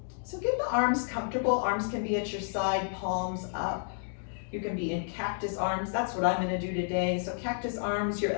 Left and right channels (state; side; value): silent; right; digital silence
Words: So get the arms comfortable. Arms can be at your side, palms up. You can be in cactus arms. That's what I'm gonna do today. So cactus arms, your